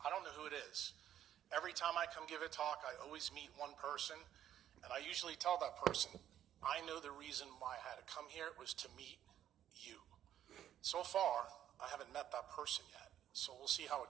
don't know who it is. Every time I come give a talk, I always meet one person, and I usually tell that person, I know the reason why I had to come here was to meet you. So far, I haven't met that person yet, so we'll see how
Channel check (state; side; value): quieter; left; 10.9 dB